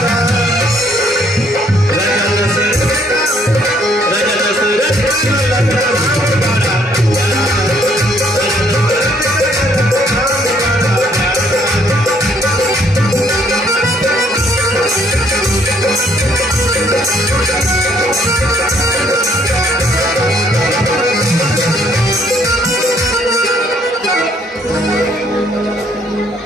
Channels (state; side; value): normal; both; correlation 0.66